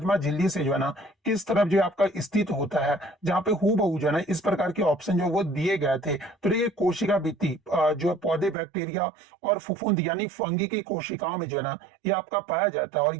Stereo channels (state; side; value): drops out; left; at 8.6 s